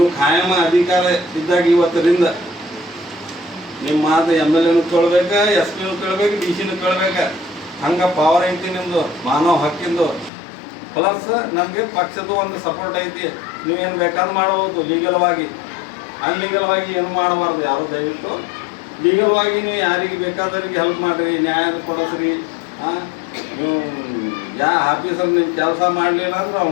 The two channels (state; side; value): drops out; right; at 10.3 s